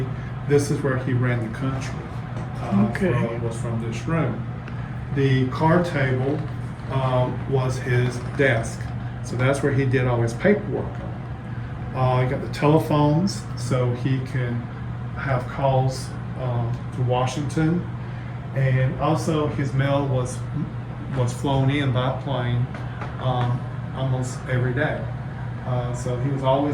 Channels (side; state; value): both; identical; correlation 1.00